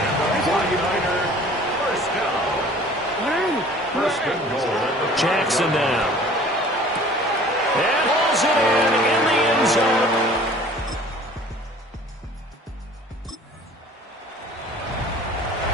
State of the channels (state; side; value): normal; both; correlation 0.48